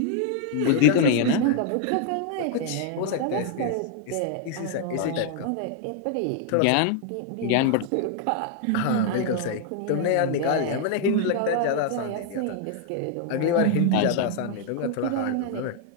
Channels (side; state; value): both; different; correlation 0.00